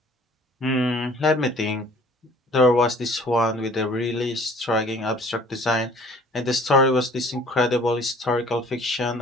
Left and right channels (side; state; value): both; normal; correlation 0.52